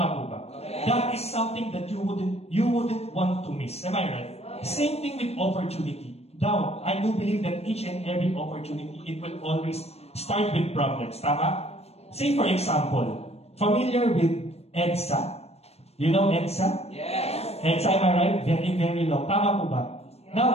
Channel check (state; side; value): late; right; 0.30 ms